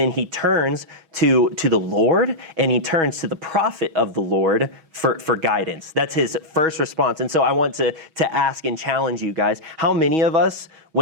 he turns to the Lord, and he turns to the prophet of the Lord for guidance. That's his first response. And so I want to ask and challenge you guys, how many of us,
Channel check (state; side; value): late; left; 6.3 ms